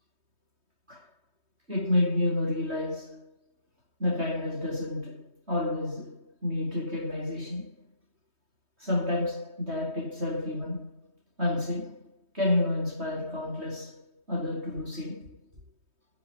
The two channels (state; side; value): late; left; 3.2 ms